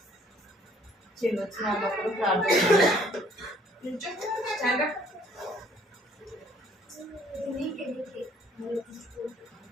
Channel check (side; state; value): both; normal; correlation 0.61